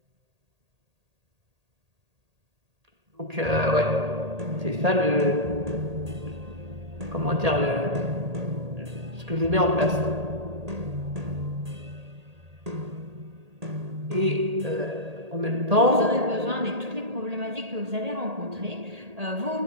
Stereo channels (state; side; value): late; left; 1.8 ms